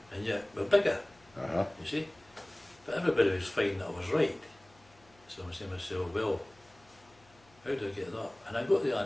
and yet we're bigger, Uh-huh. you see? But everybody was finding that I was right. So I'm saying to myself, well, how do I get that? And I got the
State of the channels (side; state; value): left; noise; hum, 29 dB below the sound